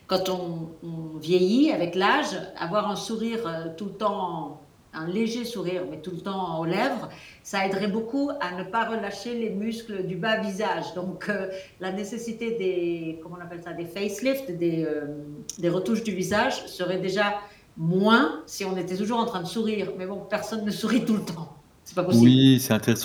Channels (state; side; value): identical; both; correlation 1.00